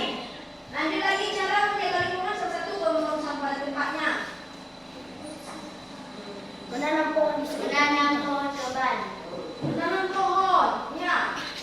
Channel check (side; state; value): both; identical; correlation 1.00